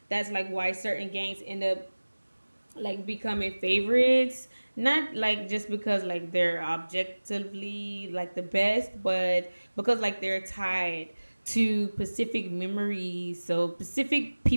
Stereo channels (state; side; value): inverted; both; correlation -1.00